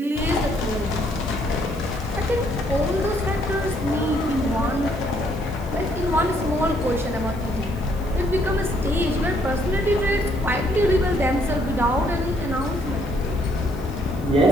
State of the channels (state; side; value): noise; right; hiss, 23 dB below the sound